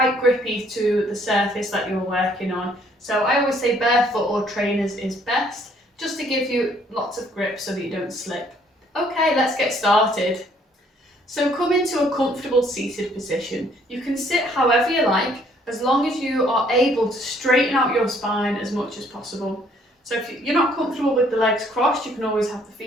grippy to the surface that you're working on. So I always say barefoot or trainers is best, just to give you lots of grip so that you don't slip. Okay, let's get started. So come into a comfortable seated position. You can sit however you like, as long as you are able to straighten out your spine as much as possible. So if you're not comfortable with the legs crossed, you can always have the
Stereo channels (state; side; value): normal; both; correlation 0.63